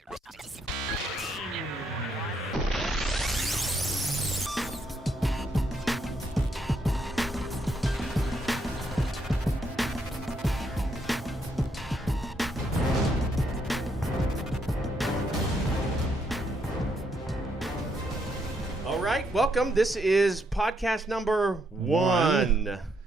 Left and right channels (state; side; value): normal; both; correlation 0.75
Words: All right, welcome. This is podcast number one